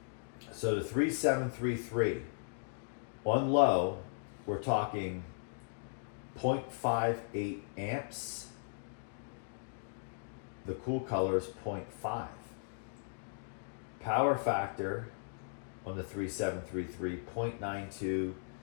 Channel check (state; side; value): silent; right; digital silence